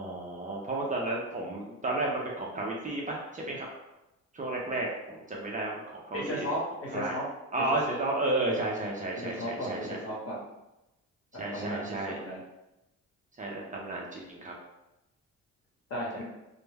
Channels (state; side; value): normal; both; correlation 0.06